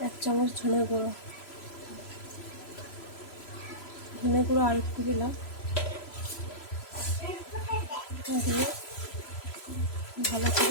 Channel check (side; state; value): right; late; 3.0 ms